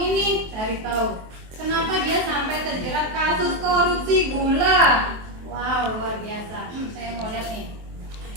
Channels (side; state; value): left; late; 23 ms